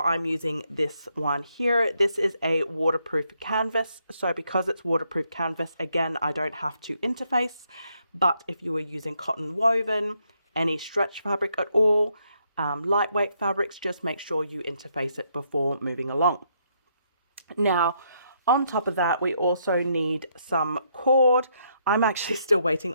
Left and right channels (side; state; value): both; inverted; correlation -0.75